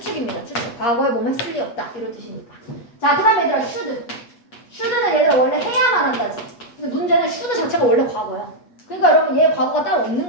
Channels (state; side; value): late; right; 8.2 ms